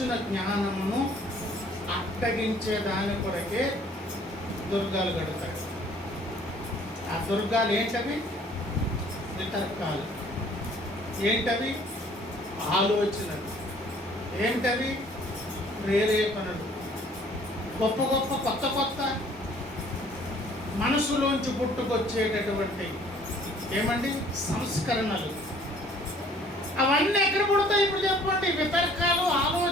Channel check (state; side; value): normal; both; correlation 0.56